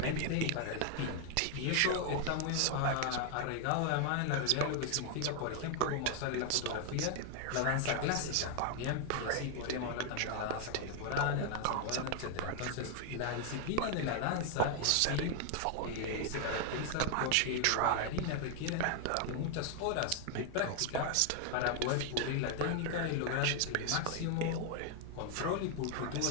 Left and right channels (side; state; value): both; different; correlation 0.00